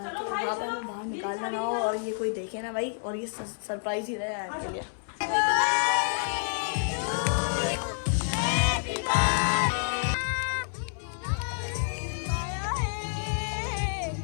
वहाँ पर हमें बाहर निकालना ना हो और ये कोई देखे ना भाई, और ये सरप्राइज ही रहे आपके लिए।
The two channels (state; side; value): silent; right; 59 dB below the other